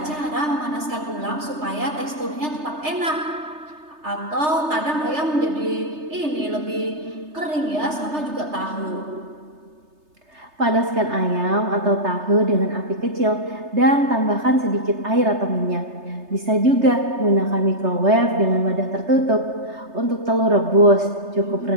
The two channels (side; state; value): left; late; 3.3 ms